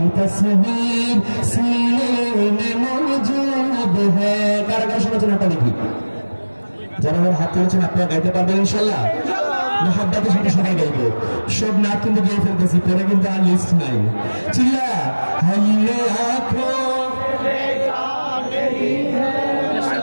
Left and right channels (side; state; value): both; inverted; correlation -1.00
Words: तस्वीर सीने में मौजूद है। কারা কারা শোনাচ্ছেন আপনারা দেখি, যারা আমার হাত তুলেছেন আপনারা গাইতে পারবেন ইনশাআল্লাহ। মোহাব্বতের সাথে সবাই গাইবো, সব নাচ কিন্তু গেয়ে ফেলতেছি, পরে কিন্তু আর লিস্ট নাই। চিল্লা हमने आँखों